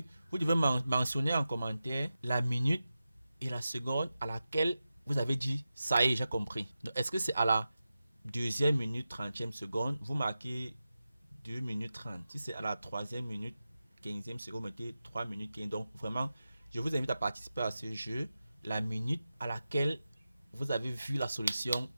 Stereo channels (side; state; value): both; inverted; correlation -0.93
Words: vous devez mentionner en commentaire la minute et la seconde à laquelle vous avez dit ça y est, j'ai compris. Est-ce que c'est à la deuxième minute 30e seconde, vous marquez 2 minutes 30. Si c'est à la troisième minute 15e seconde, vous mettez 3 minutes 15. Donc vraiment, je vous invite à participer à ce jeu. La minute à laquelle vous avez vu la solution